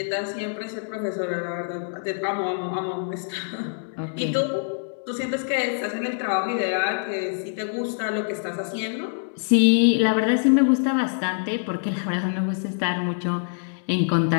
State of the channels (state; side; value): silent; right; 62 dB below the other